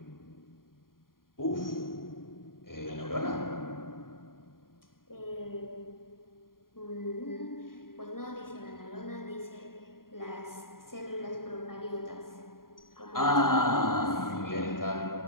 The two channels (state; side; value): late; right; 0.91 ms